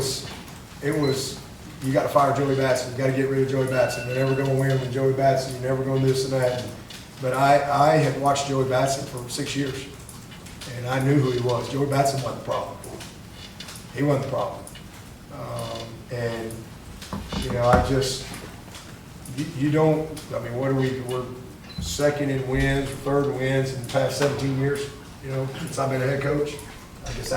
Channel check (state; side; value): identical; both; correlation 1.00